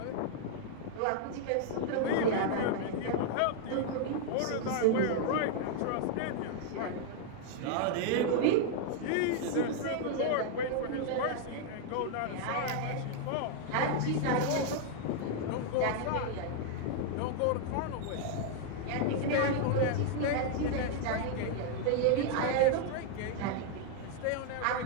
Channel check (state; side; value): different; both; correlation 0.00